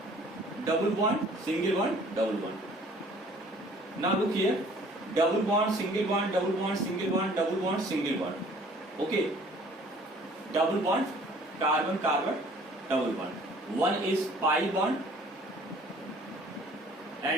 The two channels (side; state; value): both; normal; correlation 0.54